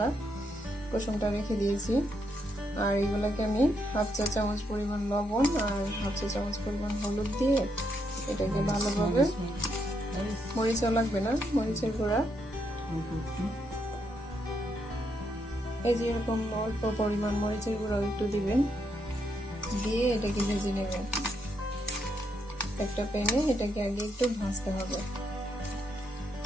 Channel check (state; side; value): normal; both; correlation 0.78